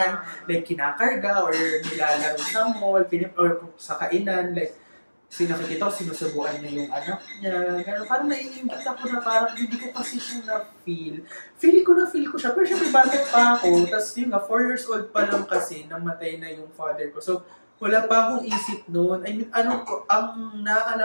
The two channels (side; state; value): both; inverted; correlation -1.00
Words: like kinakarga or nilalaro sa mall, or sa kainan, like, Kasi nakikita ko, sinusubuan niya yung anak niya. Gano'n, parang naiingit ako na parang hindi ko kasi siya na-feel. Feel ko siya. Pero syempre, bakit pa ako? Tapos yun nga, 4 years old pa lang kasi, namatay na yung father ko. So, wala pa akong isip noon. I mean, ang